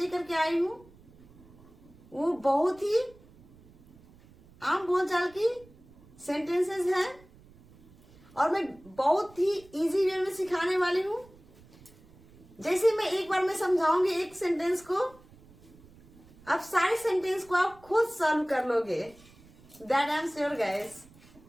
के आई हूं वो बहुत ही आम बोलचाल की सेंटेंसेस हैं और मैं बहुत ही इजी वे में सिखाने वाली हूं। जैसे मैं एक बार में समझाऊंगी एक सेंटेंस को, अब सारे सेंटेंस को आप खुद सॉल्व कर लोगे। That I am sure guys.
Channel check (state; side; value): noise; right; rumble, 25 dB below the sound